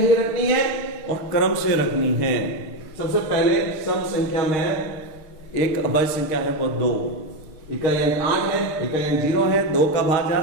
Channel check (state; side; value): late; right; 6.5 ms